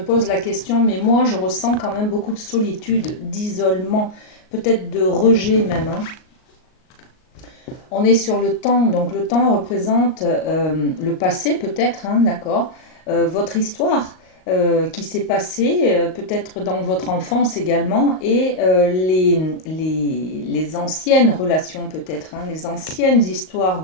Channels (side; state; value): right; late; 38 ms